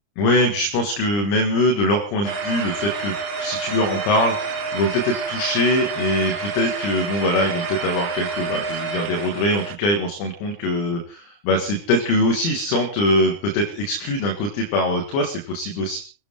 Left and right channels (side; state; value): right; late; 29 ms